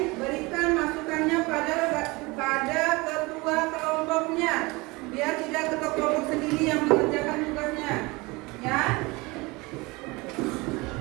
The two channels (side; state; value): left; quieter; 24.2 dB